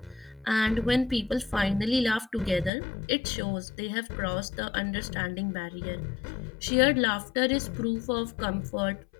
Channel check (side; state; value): right; drops out; at 2.7 s